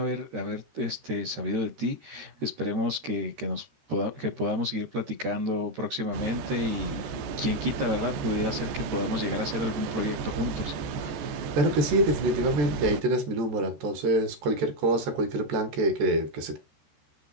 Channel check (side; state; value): left; late; 13 ms